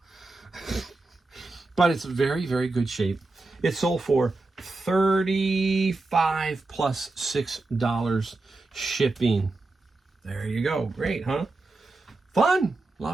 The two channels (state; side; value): quieter; left; 3.3 dB